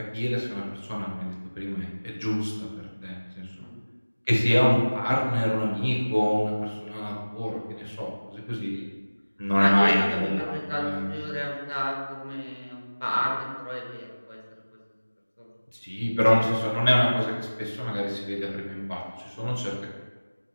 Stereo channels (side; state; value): both; inverted; correlation -1.00